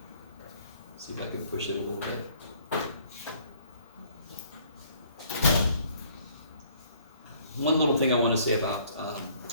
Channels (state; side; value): inverted; both; correlation -0.60